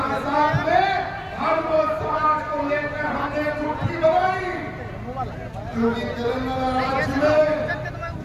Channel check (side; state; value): both; identical; correlation 1.00